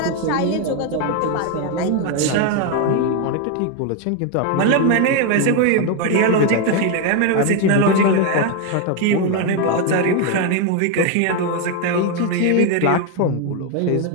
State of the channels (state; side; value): different; both; correlation 0.01